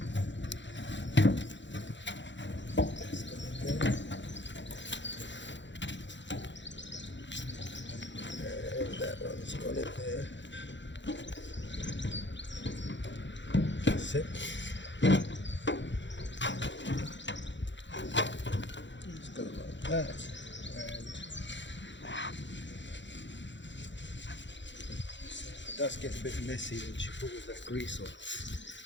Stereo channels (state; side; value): late; right; 0.53 ms